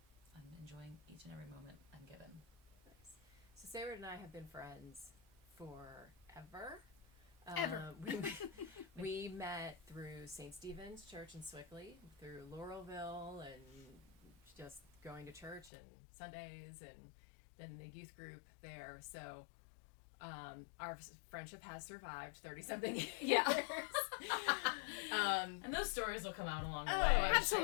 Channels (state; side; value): drops out; right; at 15.7 s